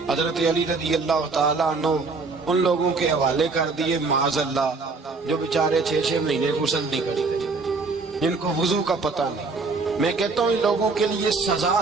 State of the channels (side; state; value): left; quieter; 4.1 dB